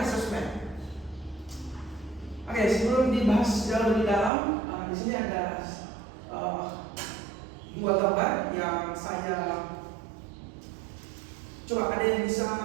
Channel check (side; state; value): left; drops out; at 4.3 s